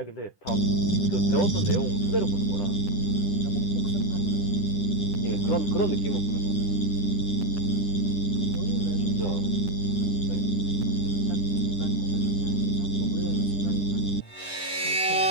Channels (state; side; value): late; right; 10 ms